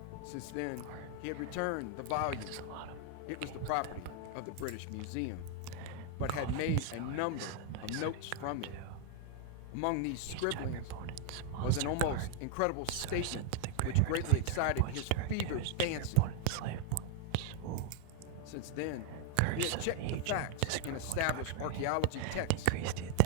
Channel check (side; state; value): both; different; correlation 0.00